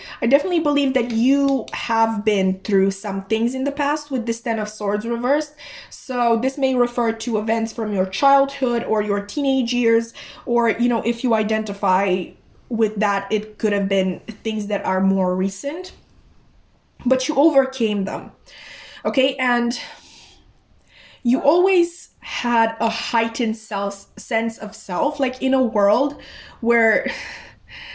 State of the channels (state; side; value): identical; both; correlation 1.00